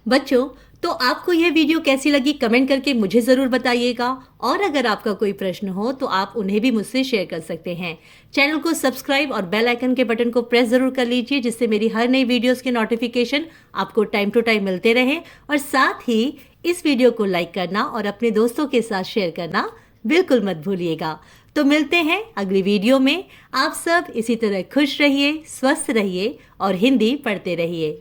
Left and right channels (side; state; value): both; identical; correlation 1.00